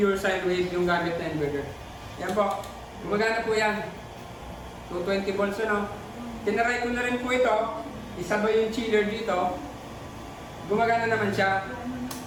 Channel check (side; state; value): both; identical; correlation 1.00